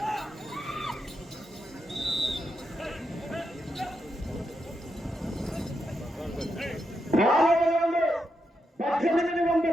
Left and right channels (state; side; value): normal; both; correlation 0.84